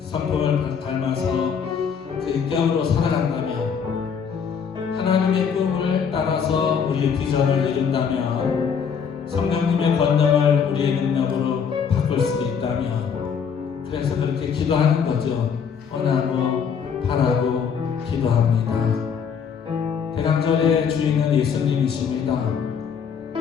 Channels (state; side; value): quieter; right; 6.9 dB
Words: 닮아서 그 인격으로 살아간다면, 하나님의 꿈을 따라서 우리의 비전을 이룬다면, 성령님의 권능을 우리의 능력으로 바꿀 수 있다면, 그래서 그렇게 기도하는 거죠. 원하고 바라고 기도합니다. 대강절의 주인은 예수님이십니다.